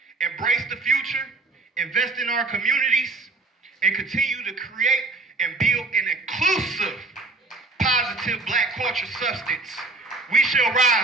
embrace the future, invest in our communities, and continue to create and build an inclusive, positive black culture substance. We shall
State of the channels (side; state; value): left; quieter; 3.4 dB